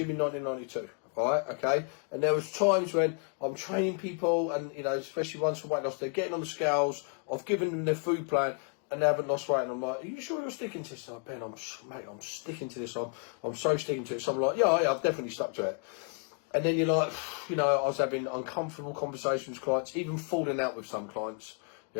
in 1992. Right? Okay. And there was times when I'm training people, and especially ones for weight loss, they're getting on the scales. I've given them their food plan, and they haven't lost weight, and I'm like, "Are you sure you're sticking to this?" Ben, I'm sticking to this. I'm so sticking to it. So I'm like, yeah, I've definitely stuck to it. And then you're like, I was having uncomfortable conversations with clients, even falling out with some clients,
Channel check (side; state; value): right; quieter; 39.5 dB